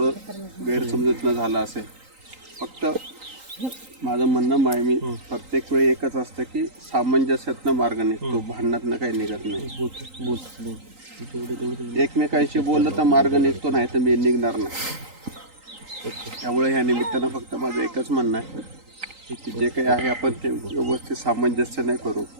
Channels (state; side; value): late; left; 3.8 ms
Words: गैरसमजूतनं झालं असेल. फक्त माझं म्हणणं आहे, मी प्रत्येक वेळी एकच असतं की सामंजस्यातनं मार्ग निघतो, भांडणातनं काही निघत नाही. एकमेकांशी बोललं तर मार्ग निघतो, नाही तर मी निघणार नाही. त्यामुळे ह्या निमित्तानं फक्त माझं एकच म्हणणं आहे की जे काही आहे आपण ते व्यवस्थित सामंजस्याने करू.